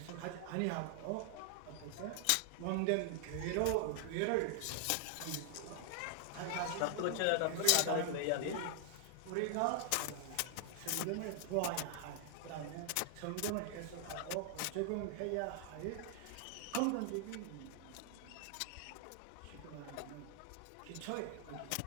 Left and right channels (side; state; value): both; different; correlation 0.00